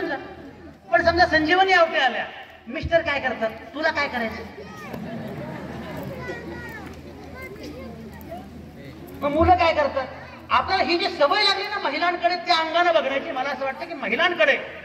जा. पण समजा संजीवनी आवटे आल्या, मिस्टर काय करतात, तुला काय करायचं, मग मुलं काय करतात. आपल्याला ही जी सवय लागली ना महिलांकडे त्या अंगाने बघण्याची, मला असं वाटतं की महिलांकडे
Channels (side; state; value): both; identical; correlation 1.00